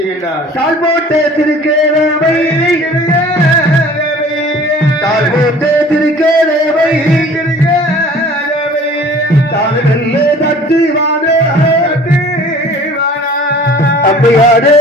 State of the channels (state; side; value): normal; both; correlation 0.48